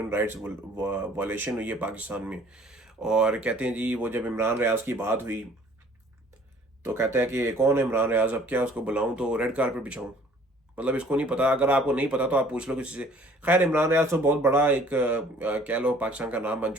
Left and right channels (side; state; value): both; normal; correlation 0.55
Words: राइट्स वायलेशन हुई है पाकिस्तान में, और कहते हैं जी वो जब इमरान रियाज की बात हुई तो कहता है कि कौन है इमरान रियाज, अब क्या उसको बुलाऊं तो रेड कारपेट बिछाऊं? मतलब इसको नहीं पता। अगर आपको नहीं पता तो आप पूछ लो किसी से। खैर, इमरान रियाज तो बहुत बड़ा एक कह लो पाकिस्तान का नाम बन